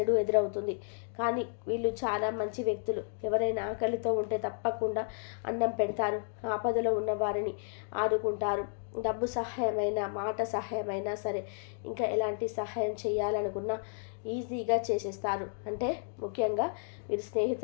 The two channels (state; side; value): silent; right; digital silence